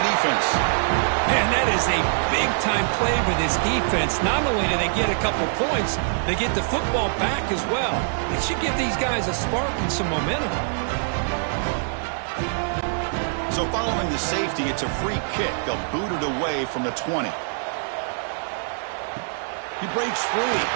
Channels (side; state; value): left; silent; digital silence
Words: defense. And that is a big-time play for this defense. Not only do they get a couple points, they get the football back as well. It should give these guys a spark and some momentum. So following the safety, it's a free kick. They'll boot it away from the 20. He breaks free.